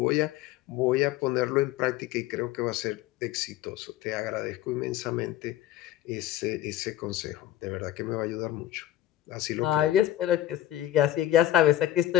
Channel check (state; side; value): quieter; right; 13.3 dB